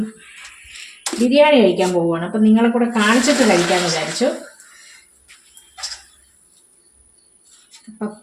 ബിരിയാണി കഴിക്കാൻ പോവുകയാണ്. അപ്പം നിങ്ങളെ കൂടെ കാണിച്ചിട്ട് കഴിക്കാമെന്ന് വിചാരിച്ചു.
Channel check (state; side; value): identical; both; correlation 1.00